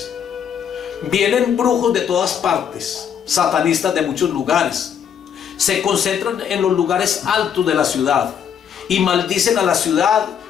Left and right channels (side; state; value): right; quieter; 8.2 dB